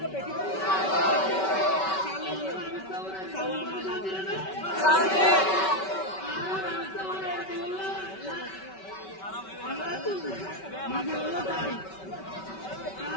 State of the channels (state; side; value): late; right; 5.2 ms